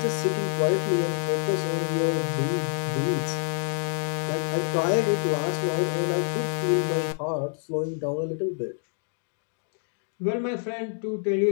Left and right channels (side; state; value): right; silent; digital silence